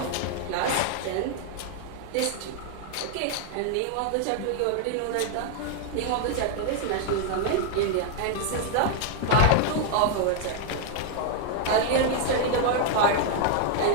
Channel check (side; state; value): both; different; correlation 0.00